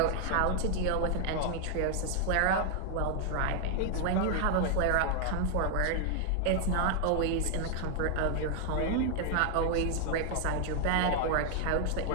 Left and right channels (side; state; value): both; different; correlation 0.00